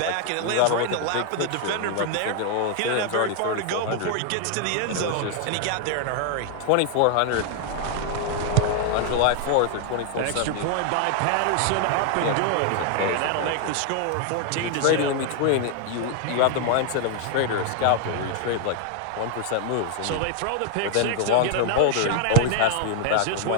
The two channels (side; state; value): both; different; correlation 0.00